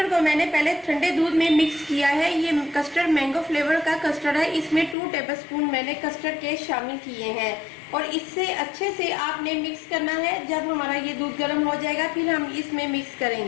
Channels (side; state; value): right; drops out; at 5.0 s